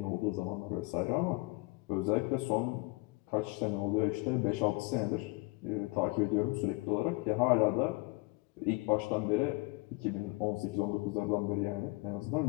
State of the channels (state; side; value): quieter; right; 25.7 dB